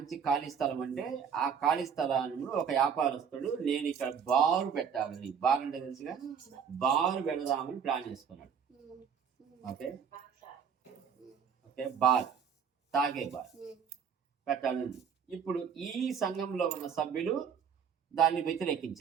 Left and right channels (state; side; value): quieter; left; 7.2 dB